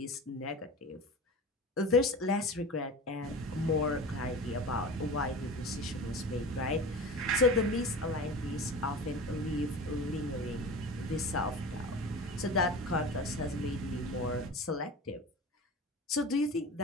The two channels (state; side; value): normal; both; correlation 0.34